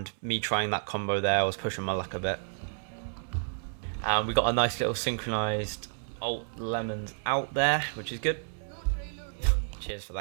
me trying that combo there, I was pushing my luck a bit. We got a nice little synchronized alt Lemons out there, which is good. Cheers for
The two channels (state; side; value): silent; left; 57 dB below the other